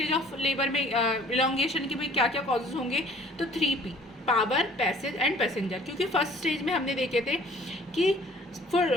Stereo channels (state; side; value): normal; both; correlation 0.53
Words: of labour में इलॉन्गेशन के भी क्या क्या कॉजेज होंगे, तो 3P, power, passage and passenger. क्योंकि फर्स्ट स्टेज में हमने देखे थे कि